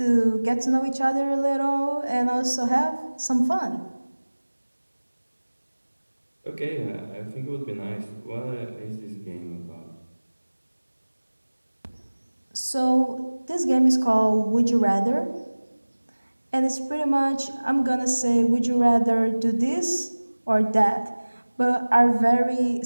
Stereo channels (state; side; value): inverted; both; correlation -1.00